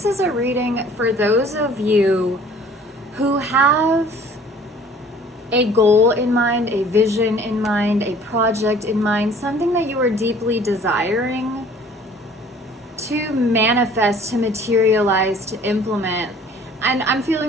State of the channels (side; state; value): both; normal; correlation 0.52